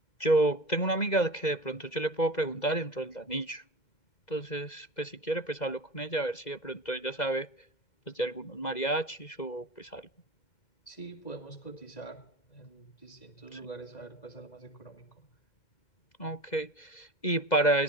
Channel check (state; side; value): late; right; 2.0 ms